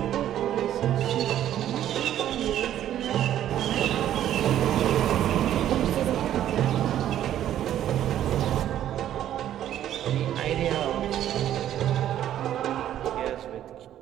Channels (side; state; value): left; quieter; 11.5 dB